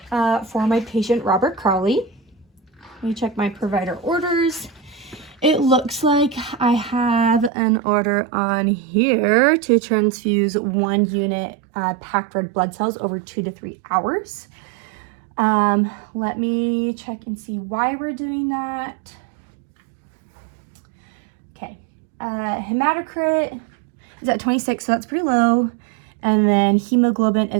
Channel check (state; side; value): drops out; left; at 7.5 s